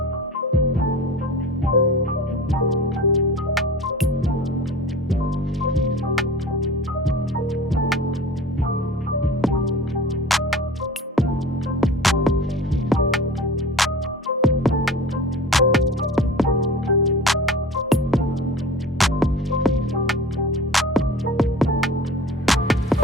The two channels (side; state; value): both; normal; correlation 0.38